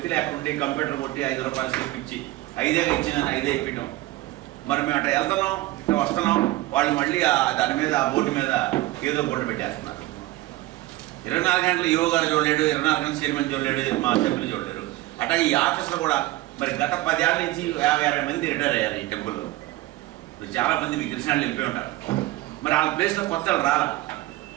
లేకుంటే కంప్యూటర్ కొట్టి 5 రూపాయలు స్లిప్ ఇచ్చి 5 ఇచ్చిందని 5 ఇప్పించాం. మరి మేము అట్లా వెళ్తున్నాం ఇట్లా వస్తున్నాం, వాళ్ళు మళ్ళీ దాని మీద ఆ బోర్డు మీద ఏదో బోర్డు పెట్టేస్తున్నారు. 24 గంటలు ఈవో గారు చూడలేడు, 24 గంటలు చైర్మన్ చూడలేడు, మా సభ్యులు చూడలేరు. అట్లాగే ఈ ఆఫీసులో కూడా మరి గత 10 ఏళ్ళ నుంచి 50-60 మంది రిటైర్ అయ్యారు ఈ టెంపుల్లో. చాలా మంది మీకు తెలిసిన వాళ్ళు వెళ్ళిపోయి ఉంటారు. మరి వాళ్ళ ప్లేస్లో కొత్త వాళ్ళు రాలా.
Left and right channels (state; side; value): quieter; left; 17.9 dB